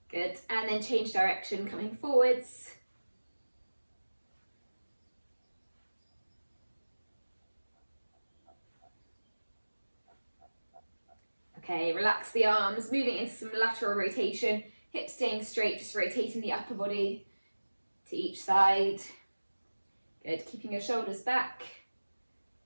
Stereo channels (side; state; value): both; inverted; correlation -1.00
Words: Good, and then change direction, coming forwards. Okay, relax the arms, moving into some lateral rotation, hips staying straight, just rotating the upper body to each side. Good, keeping your shoulders back.